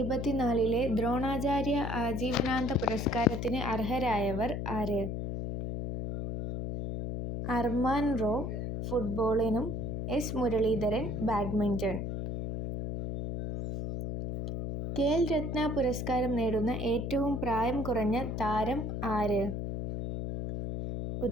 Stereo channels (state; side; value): noise; left; hum, 3 dB below the sound